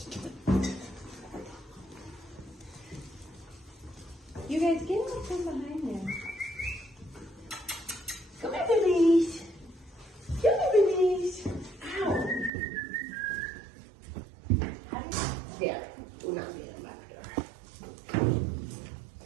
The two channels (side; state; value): left; drops out; at 12.5 s